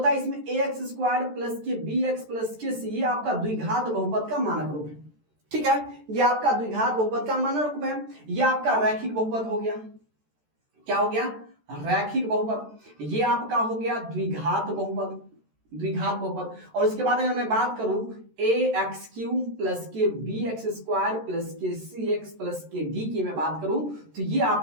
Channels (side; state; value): left; late; 13 ms